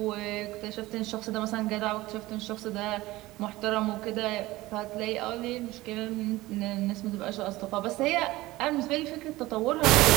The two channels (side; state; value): left; quieter; 18.6 dB